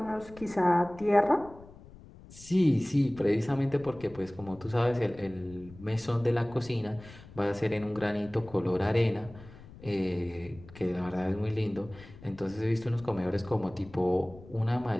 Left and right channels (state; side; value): noise; left; rumble, 19 dB below the sound